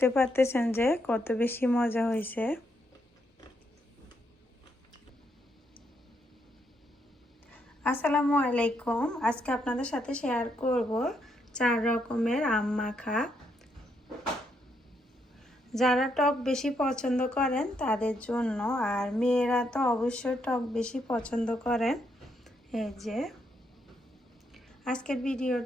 পারতেছেন যে কত বেশি মজা হয়েছে। আসসালামু আলাইকুম। আজকে আপনাদের সাথে শেয়ার করব 4 রকমের আম মাখা। যারা টক বেশি পছন্দ করেন তাদের জন্য, আর মেয়েরা তো অবশ্যই টক বেশি পছন্দ করেন। এই যে আজকের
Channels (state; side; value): normal; both; correlation 0.77